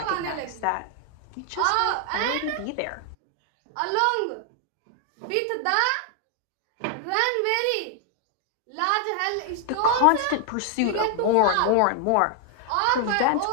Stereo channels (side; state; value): both; different; correlation 0.00